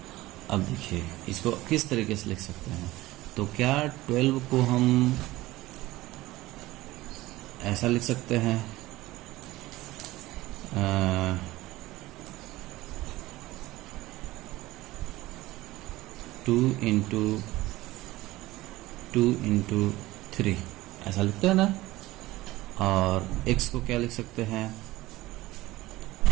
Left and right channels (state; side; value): quieter; left; 18.0 dB